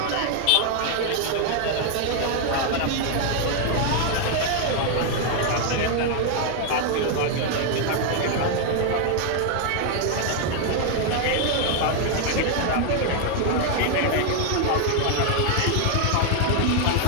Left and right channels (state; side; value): different; both; correlation 0.00